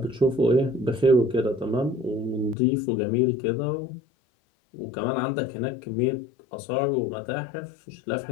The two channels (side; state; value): right; drops out; at 2.6 s